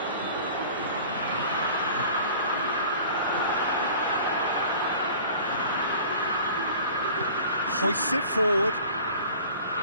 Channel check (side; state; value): both; inverted; correlation -0.45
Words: Hoists it forward.